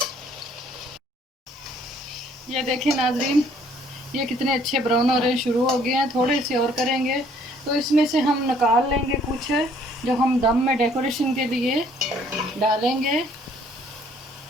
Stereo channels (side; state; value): both; normal; correlation 0.61